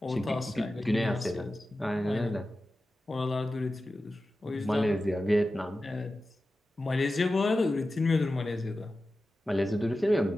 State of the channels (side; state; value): both; normal; correlation 0.94